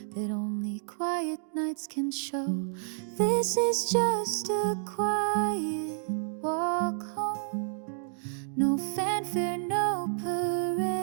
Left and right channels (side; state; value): left; silent; digital silence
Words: that only quiet nights can show. This is just a quiet walk home. No fanfare, no